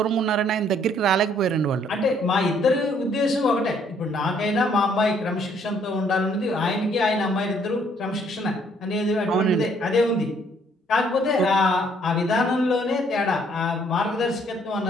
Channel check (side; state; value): both; normal; correlation 0.65